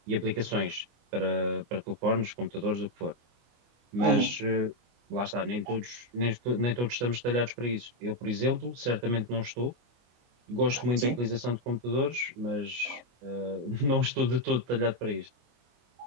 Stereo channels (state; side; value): late; left; 25 ms